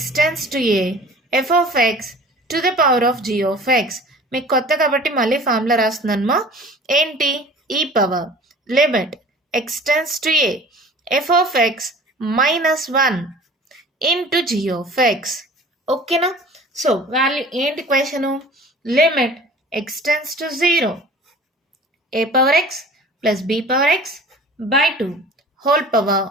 tends to a f of x to the power of g of x. మీకు కొత్త కాబట్టి మళ్ళీ ఫార్ములా రాస్తున్నానమ్మా. ఏంటి? E power limit x tends to a f of x minus 1 into g of x. ఓకేనా? So value ఏంటి question? Limit x tends to 0 a power x plus b power x by 2 whole power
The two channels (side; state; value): both; normal; correlation 0.44